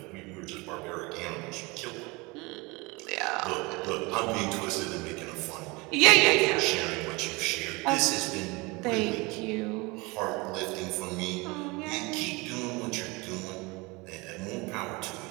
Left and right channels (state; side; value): quieter; left; 25.3 dB